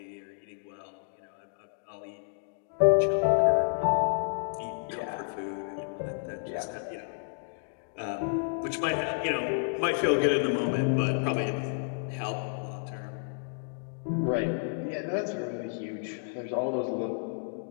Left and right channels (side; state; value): right; silent; digital silence